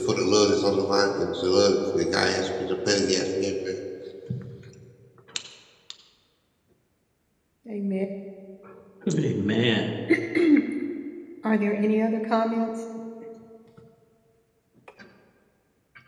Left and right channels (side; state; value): both; identical; correlation 1.00